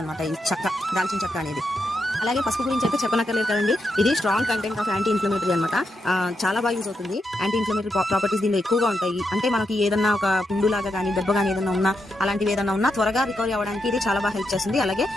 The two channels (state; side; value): normal; both; correlation 0.83